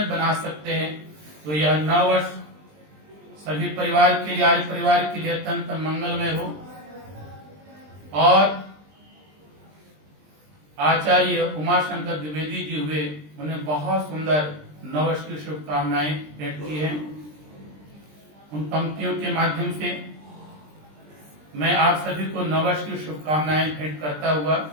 बना सकते हैं। तो यह नव वर्ष सभी परिवार के लिए, आर्य परिवार के लिए अत्यंत मंगलमय हो। और आचार्य उमाशंकर द्विवेदी जी हुए, उन्हें बहुत सुंदर नववर्ष की शुभकामनाएं भेंट की हैं। उन पंक्तियों के माध्यम से मैं आप सभी को नववर्ष की शुभकामनाएं भेंट करता हुआ,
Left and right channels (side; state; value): left; late; 20 ms